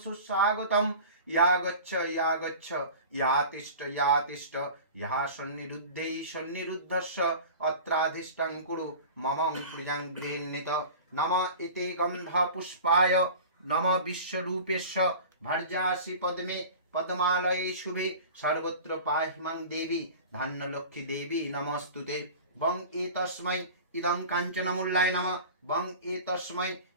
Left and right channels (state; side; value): inverted; both; correlation -0.37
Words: सुस्वागतं या गच्छ या तिष्ठ या सन्निरुद्धै सन्निरुद्धस्य अत्राधिष्ठं कुरु मम प्रियं गृह्णीत नमः इति गंध पुष्पाय नमः विश्वरूपेश्व भर्जासि पद्मे पद्मालये शुभे सर्वत्र पाहि मां देवी धन्यलक्ष्मी देवी नमस्तुते बं एतस्मै इदं काञ्चनमूल्याय नमः बं एतस्मै